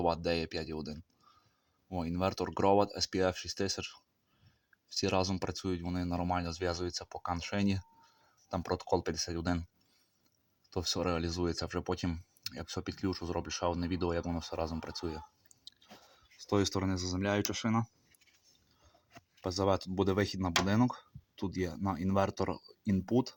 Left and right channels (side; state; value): both; identical; correlation 1.00